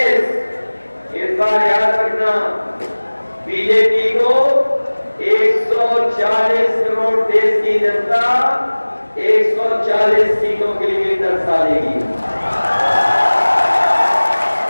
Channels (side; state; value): both; inverted; correlation -1.00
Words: इस बार याद रखना, बीजेपी को 140 करोड़ देश की जनता 140 सीटों के लिए दर्शा देगी।